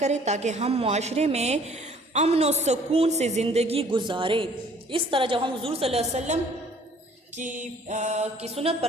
تاکہ ہم معاشرے میں امن و سکون سے زندگی گزاریں۔ اس طرح جب ہم حضور صلی اللہ علیہ وسلم کی سنت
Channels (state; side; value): normal; both; correlation 0.56